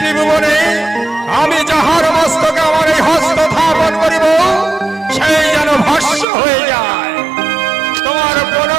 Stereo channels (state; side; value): drops out; left; at 6.2 s